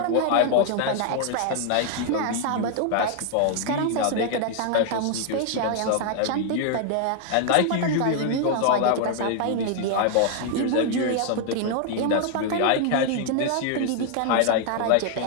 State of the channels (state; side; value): different; both; correlation 0.00